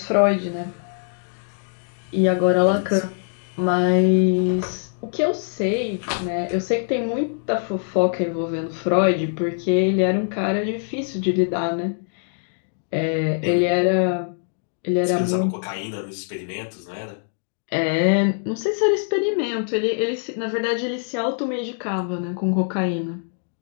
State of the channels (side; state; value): right; silent; digital silence